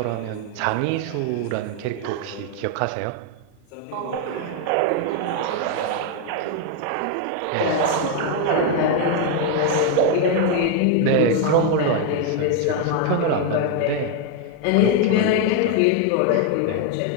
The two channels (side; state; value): both; different; correlation 0.01